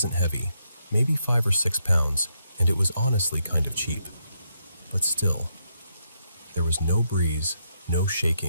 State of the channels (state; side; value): inverted; both; correlation -0.79